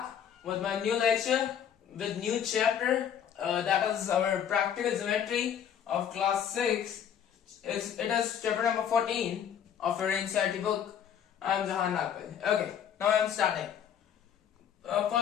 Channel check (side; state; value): right; quieter; 8.9 dB